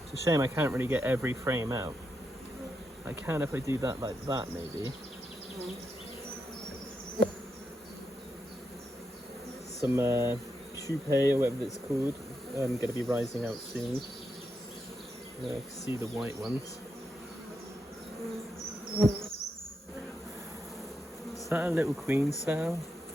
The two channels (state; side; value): normal; both; correlation 0.84